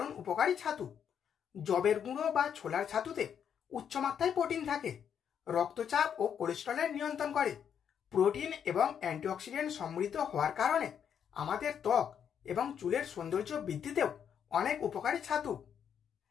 উপকারী ছাতু। যবের গুঁড়ো বা ছোলার ছাতুতে উচ্চমাত্রায় প্রোটিন থাকে, রক্তচাপ ও কোলেস্টেরলের নিয়ন্ত্রণ করে। প্রোটিন এবং অ্যান্টিঅক্সিডেন্ট সমৃদ্ধ হওয়ার কারণে আমাদের ত্বক এবং চুলের সৌন্দর্য বৃদ্ধিতেও অনেক উপকারী ছাতু।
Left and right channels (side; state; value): right; quieter; 8.2 dB